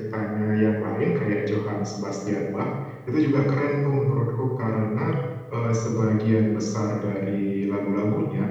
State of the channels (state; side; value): identical; both; correlation 1.00